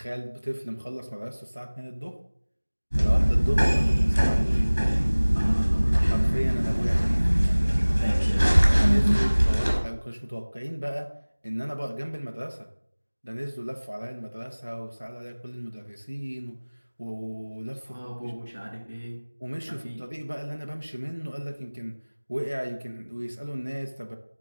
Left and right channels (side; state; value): both; inverted; correlation -1.00